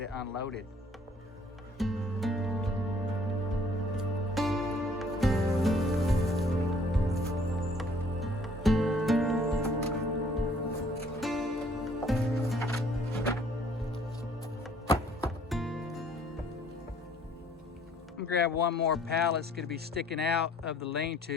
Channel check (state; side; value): normal; both; correlation 0.59